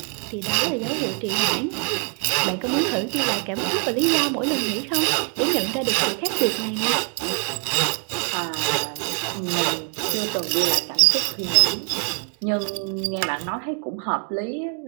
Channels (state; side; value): quieter; left; 39.0 dB